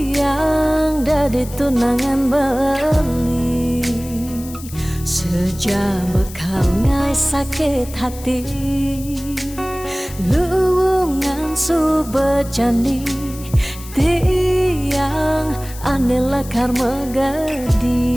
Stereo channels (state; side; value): noise; left; hiss, 16 dB below the sound